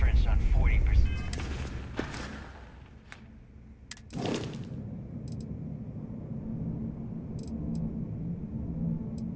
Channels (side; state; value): both; identical; correlation 1.00